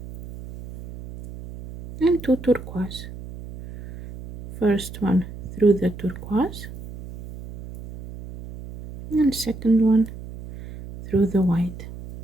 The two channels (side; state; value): right; noise; hum, 13 dB below the sound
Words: and two turquoise. First one through the turquoise, and second one through the white.